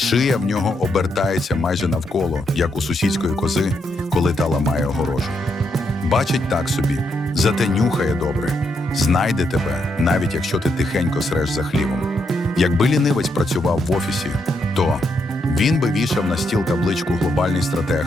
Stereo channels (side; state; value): both; normal; correlation 0.79